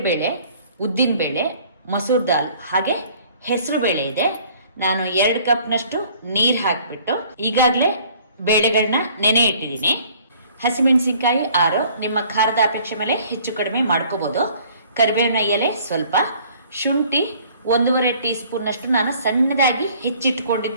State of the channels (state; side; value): inverted; both; correlation -0.55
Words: ಉದ್ದಿನ ಬೇಳೆ, ಮಸೂರ್ ದಾಲ್ ಹಾಗೆ ಹೆಸರು ಬೇಳೆ ಇದೆ. ನಾನು 2 ಕಪ್ನಷ್ಟು ನೀರು ಹಾಕ್ಬಿಟ್ಟು ಈಗಾಗಲೇ ಬೇಳೆಗಳನ್ನ ನೆನೆ ಇಟ್ಟಿದ್ದೀನಿ. ಹಸಿಮೆಣಸಿನಕಾಯಿ 6, ನಿಮ್ಮ ಖಾರದ ಅಪೇಕ್ಷೆ ಮೇಲೆ ಹೆಚ್ಚು ಕಡಿಮೆ ಮಾಡ್ಕೋಬಹುದು. ಕರಿಬೇವಿನ ಎಲೆ ಸ್ವಲ್ಪ, ಶುಂಠಿ 1.5 ಟೀ ಸ್ಪೂನ್ ಅಷ್ಟು ನಾನು ಸಣ್ಣದಾಗಿ